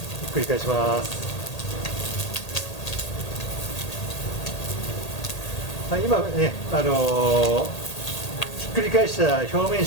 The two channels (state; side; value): late; right; 1.8 ms